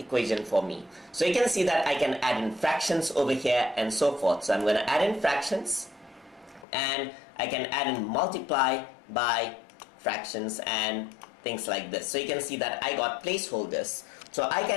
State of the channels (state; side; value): drops out; right; at 6.7 s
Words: for me. So you can see that I can add in fractions over here and so forth. So I'm going to add in fractions. And I can add in multiply by fractions and things like this. So you can see that I got placeholders. So I